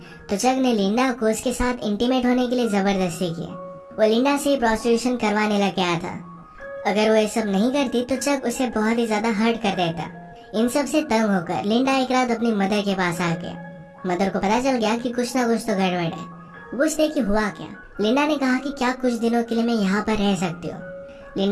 तो चक ने लिंडा को उसके साथ इंटीमेट होने के लिए जबरदस्ती की। वो लिंडा से प्रोस्टिट्यूशन करवाने लग गया था। अगर वो ये सब नहीं करती तो चक उसे बहुत ही ज्यादा हर्ट कर देता। इन सब से तंग होकर लिंडा एक रात अपनी मदर के पास आ गया। मदर को पता चल गया कि कुछ ना कुछ तो गड़बड़ है। पूछते कि हुआ क्या। लिंडा ने कहा कि क्या कुछ दिनों के लिए मैं यहाँ पर रह सकती हूँ।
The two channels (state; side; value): identical; both; correlation 1.00